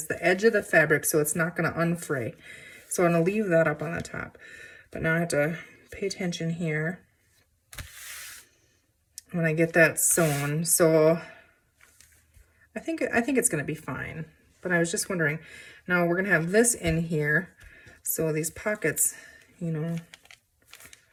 the edge of the fabric, so it's not going to unfray. So I'm going to leave that up on the top. But now I have to pay attention here when I get that sewn. So I think it's going to be fine. But I was just wondering, now we're going to have this in here, so these pockets, you know,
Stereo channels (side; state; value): both; identical; correlation 1.00